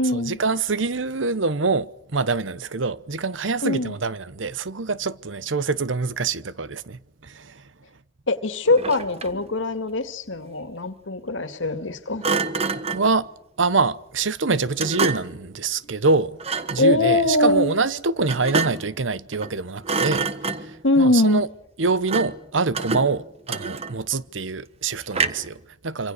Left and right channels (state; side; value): normal; both; correlation -0.11